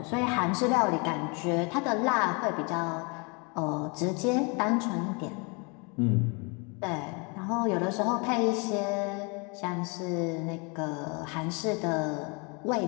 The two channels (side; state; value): right; quieter; 32.0 dB